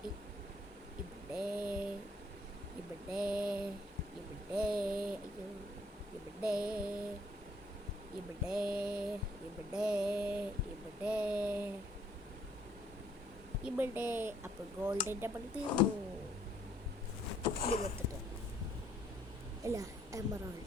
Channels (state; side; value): normal; both; correlation 0.65